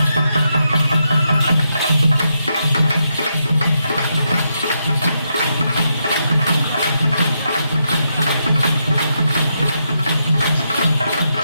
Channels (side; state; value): both; inverted; correlation -0.82